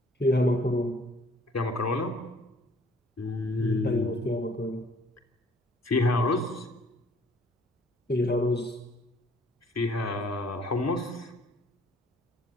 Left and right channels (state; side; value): normal; both; correlation 0.59